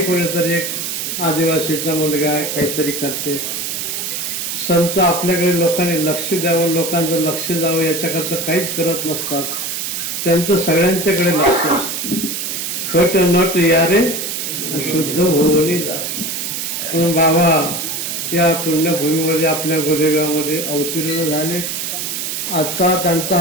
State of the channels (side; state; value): right; noise; hiss, 3 dB below the sound